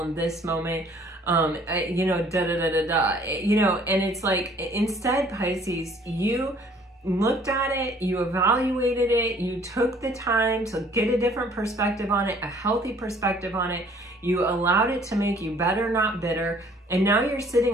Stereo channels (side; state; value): both; normal; correlation 0.57